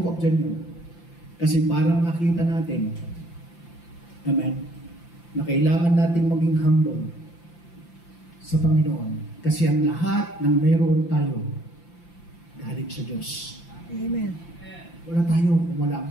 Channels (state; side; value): late; right; 5.8 ms